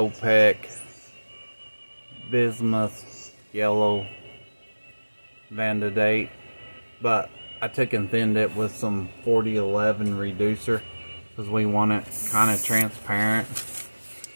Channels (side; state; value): both; inverted; correlation -1.00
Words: Bismuth Yellow Vandadate. But I took and thinned it with some 4011 reducer because we want it kind of transparent.